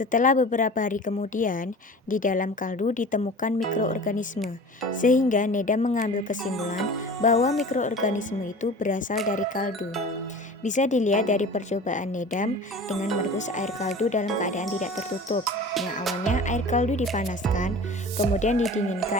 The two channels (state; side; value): normal; both; correlation 0.39